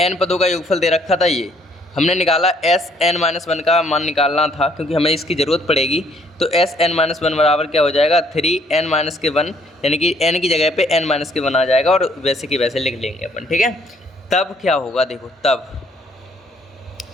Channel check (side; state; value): both; normal; correlation 0.64